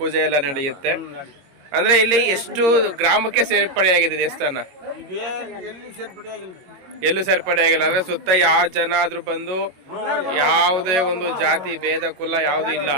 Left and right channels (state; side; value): late; left; 22 ms